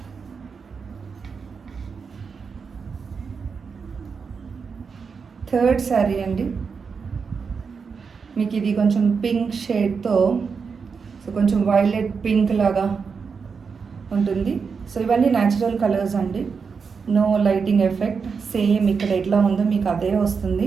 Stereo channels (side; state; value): left; quieter; 5.6 dB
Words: Third sari అండి. మీకు ఇది కొంచెం పింక్ షేడ్తో సో కొంచెం వైలెట్ పింక్ లాగా ఉంటుంది. సో ఇవన్నీ న్యాచురల్ కలర్స్ అండి, నో లైటింగ్ ఎఫెక్ట్. సేమ్ ఇక్కడ ఎట్లా ఉందో మీకు అదే వస్తుంది.